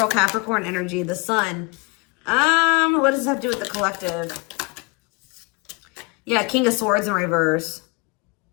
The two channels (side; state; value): right; quieter; 29.3 dB